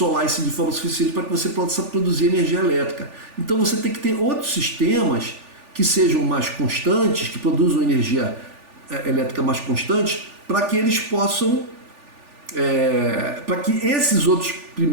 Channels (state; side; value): late; left; 3.4 ms